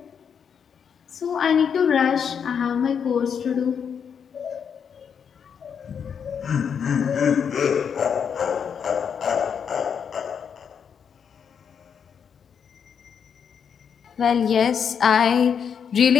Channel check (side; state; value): right; quieter; 7.2 dB